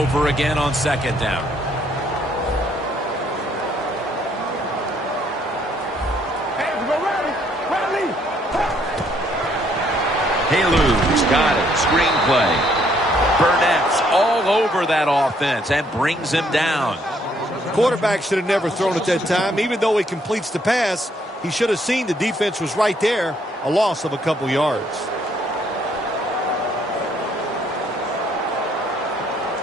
again on 2nd down. Halu's got it. Screenplay. Burnett's all over that offense and brings him down. Quarterback should have never thrown at that time. Even though he completes the pass, he should have seen the defense was right there. A loss of a couple yards.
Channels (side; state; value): both; normal; correlation 0.68